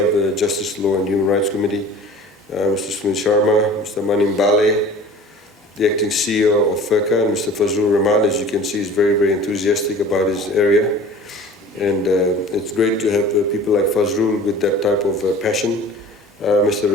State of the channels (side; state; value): both; normal; correlation 0.43